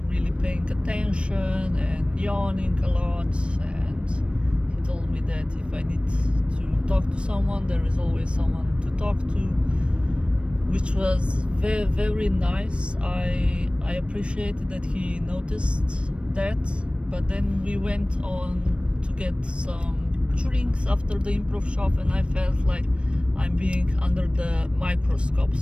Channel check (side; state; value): left; late; 0.059 ms